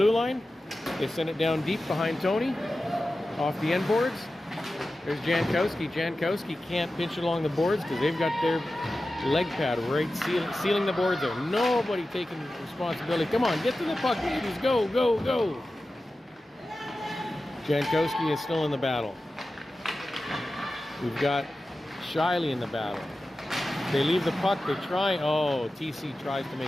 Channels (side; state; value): both; normal; correlation 0.94